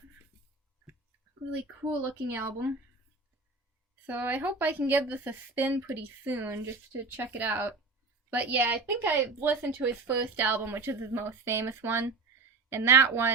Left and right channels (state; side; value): quieter; left; 3.8 dB